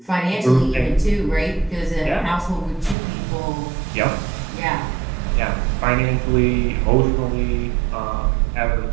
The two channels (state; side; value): drops out; left; at 3.0 s